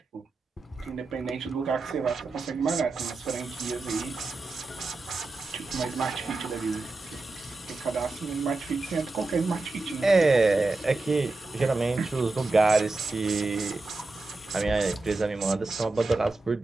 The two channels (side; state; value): left; quieter; 3.4 dB